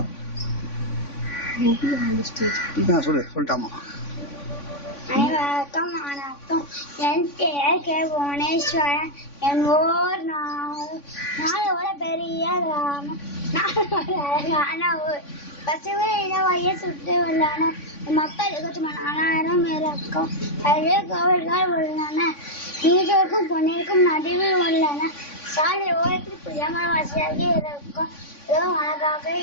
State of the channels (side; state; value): right; late; 3.5 ms